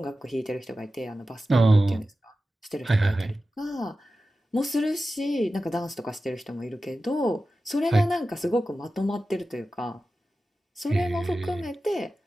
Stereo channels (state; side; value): normal; both; correlation 0.94